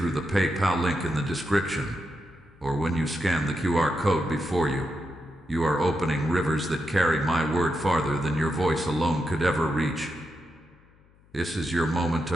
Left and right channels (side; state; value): left; noise; hum, 30 dB below the sound